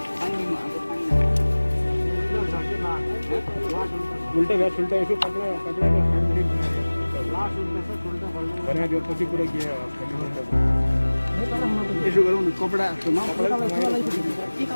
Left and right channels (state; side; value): inverted; both; correlation -1.00